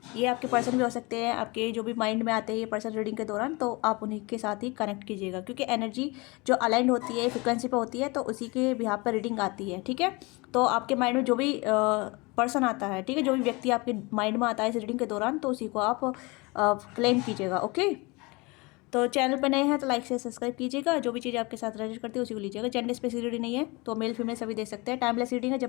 ये आपके पर्सन भी हो सकते हैं, आपके जो भी माइंड में आते हैं ये पर्सन रीडिंग के दौरान, तो आप उन्हीं के साथ ही कनेक्ट कीजिएगा, क्योंकि एनर्जी जो अलाइंड होती है फ्रिक्वेंसी पे होती है, तो उसी के बिहाफ पर रीडिंग आती है। ठीक है, तो आपके माइंड में जो भी पर्सन आता है, ठीक है, जो भी व्यक्ति आपके माइंड में आता है इस रीडिंग के दौरान, तो उसी को आप क्लेम कीजिएगा। ओके, तो चैनल पर नए हैं तो लाइक से सब्सक्राइब कीजिएगा। जो भी चीज़ आपके साथ रेजोनेट करती है उसी को लीजिएगा। जेंडर स्पेसिफिक रीडिंग नहीं है, तो मेल फीमेल सभी दे सकते हैं। टाइमलेस रीडिंग है,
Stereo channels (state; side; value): quieter; right; 25.8 dB